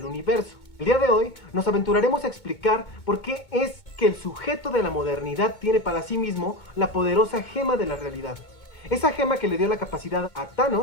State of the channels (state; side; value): late; right; 2.2 ms